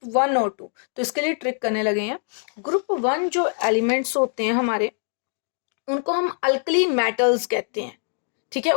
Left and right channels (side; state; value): right; silent; 63 dB below the other